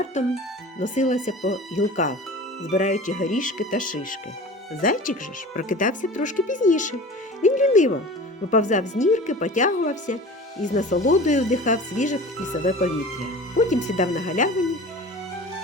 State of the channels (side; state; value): both; normal; correlation 0.38